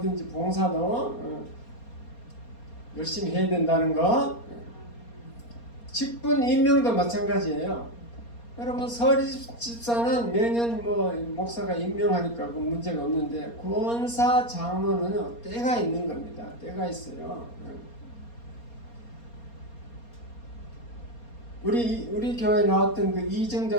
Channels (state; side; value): late; right; 4.3 ms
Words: 봉사도 열심히 해야 된다는 거. 직분 임명도 마찬가지예요. 여러분 서리 집사는 매년 목사가 임명하니까 그 문제가 없는데, 권사 장로는 때가 있는 겁니다. 때가 있어요. 우리 교회 나왔던 그